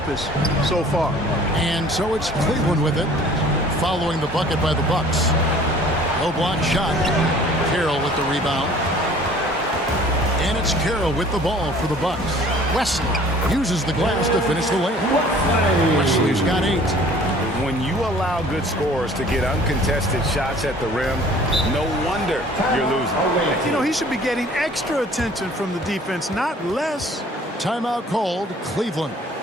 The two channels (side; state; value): both; normal; correlation 0.51